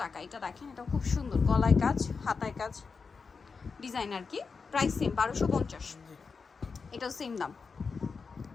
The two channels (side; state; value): right; quieter; 5.0 dB